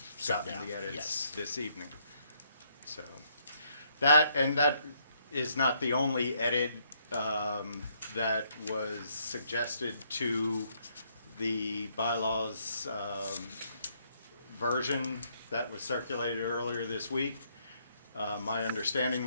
sat gotten down, the edits yes. this evening. So, that is not the only edit that was suggested to the bylaws version that was circulated earlier this week. My understanding,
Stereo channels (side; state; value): both; inverted; correlation -0.71